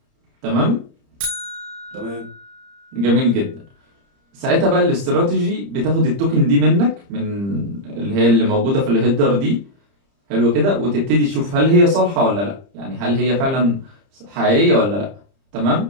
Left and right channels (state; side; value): late; left; 30 ms